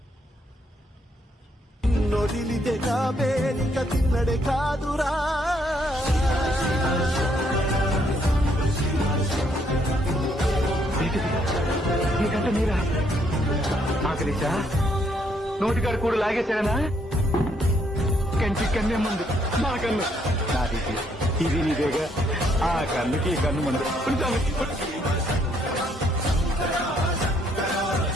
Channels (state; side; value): normal; both; correlation 0.71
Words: తిన్నడే కాదురా నీకంటే మీరా ఆకలిసా నోటికాడు కూడా లాగేశాడనా కంటి కన్నే ముందు నా కన్ను నాది ఇది నీదేగా ఆ కన్నుకి ఈ కన్ను ముందు